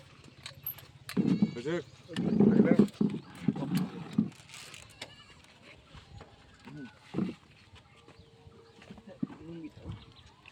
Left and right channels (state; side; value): identical; both; correlation 1.00